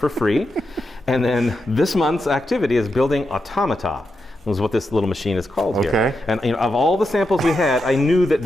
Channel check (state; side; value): normal; both; correlation 0.86